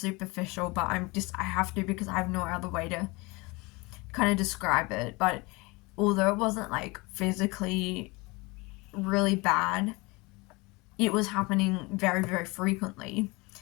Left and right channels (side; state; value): right; quieter; 25.3 dB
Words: but I have to because I have no other way to kind of describe it, but although it wasn't like physically really bad, it was happening very, very frequently.